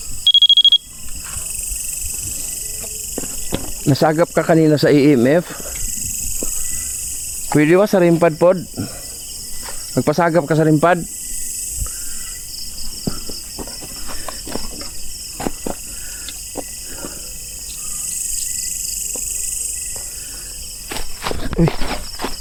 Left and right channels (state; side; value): identical; both; correlation 1.00